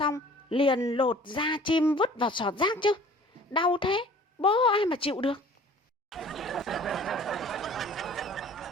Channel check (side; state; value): both; normal; correlation 0.49